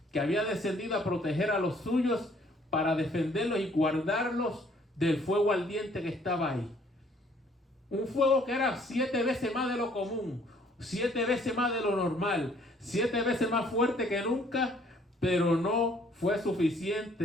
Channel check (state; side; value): normal; both; correlation 0.61